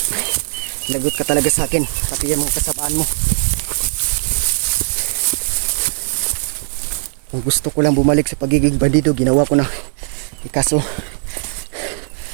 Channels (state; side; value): silent; left; 64 dB below the other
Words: lagot ka talaga sa akin, pati yung mga kasabaan mo. Kung gusto ko lang bumalik sa pagiging bandido, ginawa ko na. Kaso